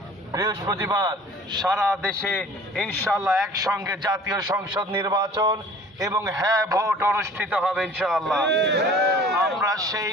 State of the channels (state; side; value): normal; both; correlation 0.47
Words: বৃহস্পতিবার সারা দেশে ইনশাআল্লাহ একসঙ্গে জাতীয় সংসদ নির্বাচন এবং হ্যাঁ ভোট অনুষ্ঠিত হবে ইনশাআল্লাহ। আমরা সেই